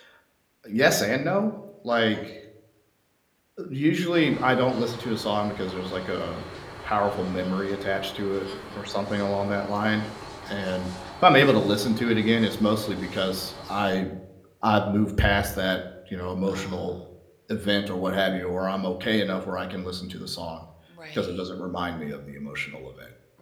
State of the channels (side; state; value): both; identical; correlation 1.00